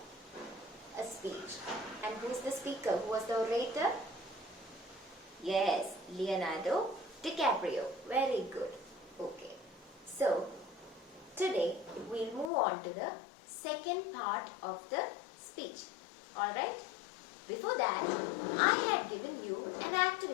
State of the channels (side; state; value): right; drops out; at 12.5 s